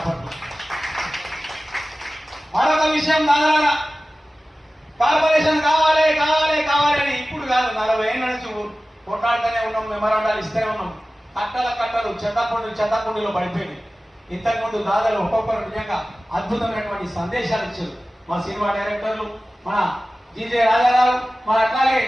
మరొక విషయం దాదాపు కార్పొరేషన్ కావాలి కావాలి కావాలి అని ఇప్పుడు కాదు, 40 ఏళ్ళ నుంచి కొట్లాడుతూనే ఉన్నాం, మెమరాండాలు ఇస్తూనే ఉన్నాం. కట్టలు చెత్తకుండీలో పడిపోయింది. ఇంతకుముందు దాదాపు ఒక్కొక్కరు నిజంగా అద్భుతమైనటువంటి సందేశాలు ఇచ్చారు. మా సినిమా డైరెక్టర్లు, మన జీజే రాజారావు, మన అట్లాగే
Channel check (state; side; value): normal; both; correlation 0.96